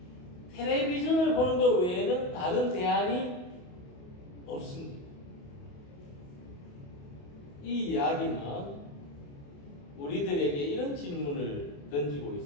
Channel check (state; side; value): late; right; 28 ms